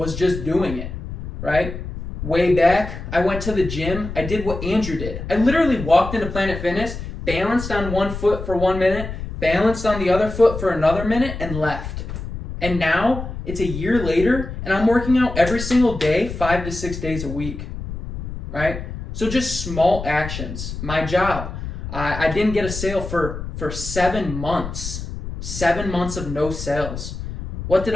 just doing it, right? Way back, I went to the gym. I did what Andrew did. I literally walked into Planet Fitness, balanced on one foot for 1 minute, balanced on the other foot for another minute, and left. And now, it's a year later, and I'm working out every single day, 5 to 6 days a week, right? So just small actions. My job, I didn't get a sale for 7 months. 7 months of no sales. What did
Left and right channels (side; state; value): left; noise; rumble, 8 dB below the sound